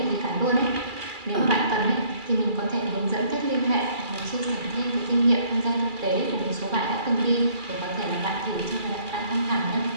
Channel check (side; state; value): left; late; 2.3 ms